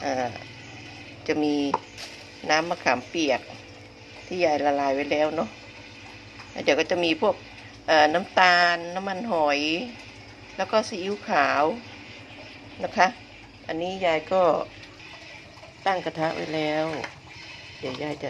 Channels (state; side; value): identical; both; correlation 1.00